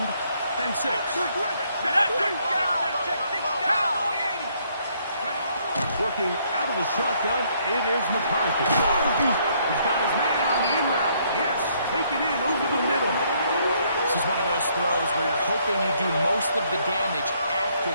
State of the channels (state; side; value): inverted; both; correlation -0.68